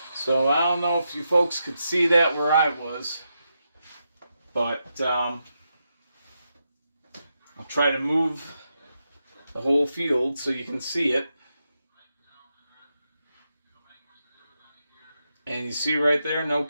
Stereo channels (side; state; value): both; inverted; correlation -0.85